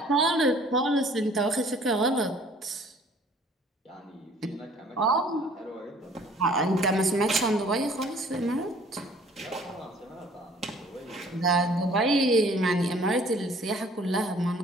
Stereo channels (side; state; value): both; normal; correlation 0.55